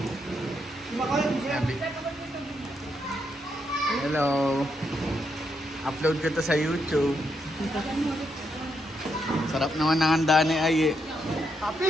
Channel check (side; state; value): both; normal; correlation 0.80